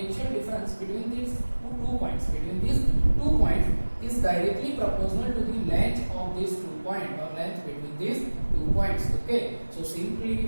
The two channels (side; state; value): both; inverted; correlation -1.00